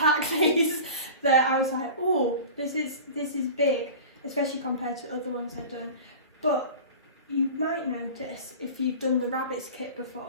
these that I was like, oh, this is big, especially compared to other ones I've done. But you might notice, if you've done the rabbits kit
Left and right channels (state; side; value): inverted; both; correlation -0.36